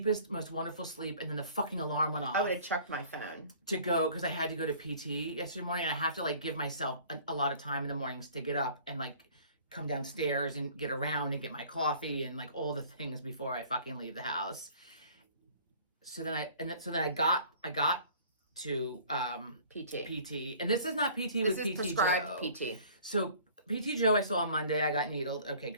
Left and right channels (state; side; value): inverted; both; correlation -0.51